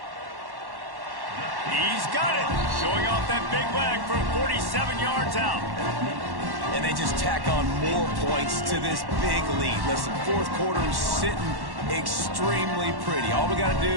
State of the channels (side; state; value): left; late; 1.1 ms